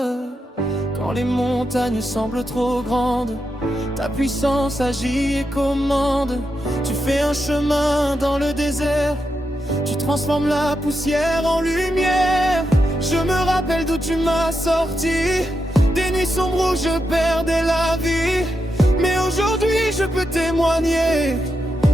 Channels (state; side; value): normal; both; correlation 0.86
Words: Quand les montagnes semblent trop grandes, ta puissance agit et commande. Tu fais un chemin dans le désert, tu transformes la poussière en lumière. Je me rappelle d'où tu m'as sorti, des nuits sombres où je perdais la vie. Mais aujourd'hui je peux témoigner